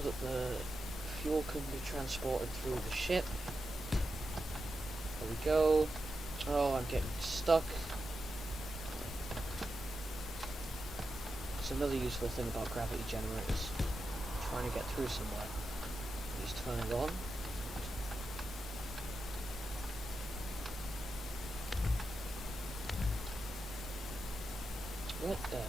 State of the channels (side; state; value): both; normal; correlation 0.89